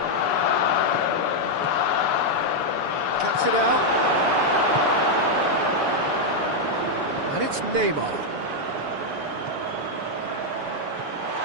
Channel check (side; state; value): left; late; 7.0 ms